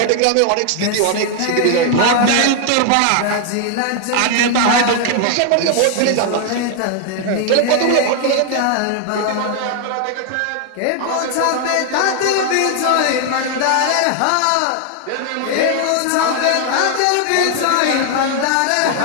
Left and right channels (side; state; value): both; different; correlation 0.00